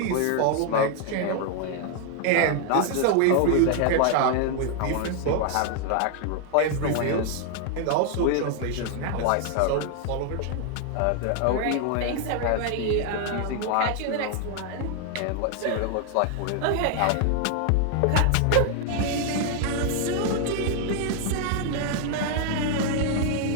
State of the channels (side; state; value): both; different; correlation 0.00